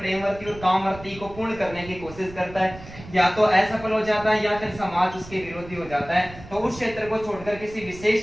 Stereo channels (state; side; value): noise; right; rumble, 16 dB below the sound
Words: और कामवर्ती को पूर्ण करने की कोशिश करता है, या तो असफल हो जाता है या फिर समाज उसके विरोधी हो जाता है, तो उस क्षेत्र को छोड़कर किसी विशेष